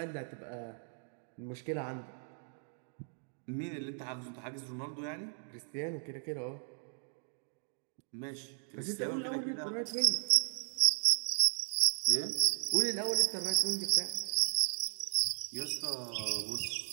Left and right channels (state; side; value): silent; left; 54 dB below the other